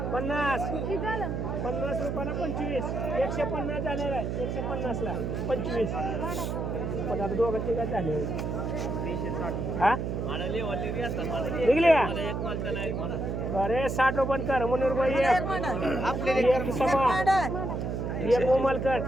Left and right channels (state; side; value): noise; right; hum, 2 dB below the sound